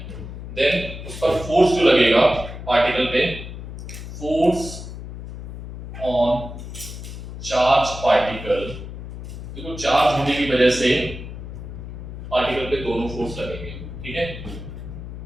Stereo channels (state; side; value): noise; left; hum, 10 dB below the sound